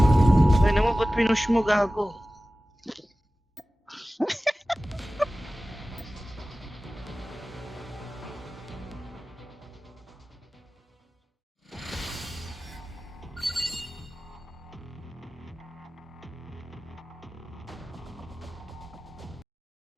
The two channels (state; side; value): normal; both; correlation 0.96